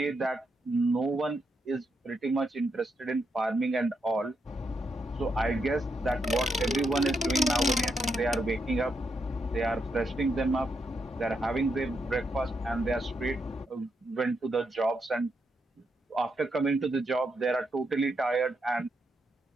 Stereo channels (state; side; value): normal; both; correlation 0.81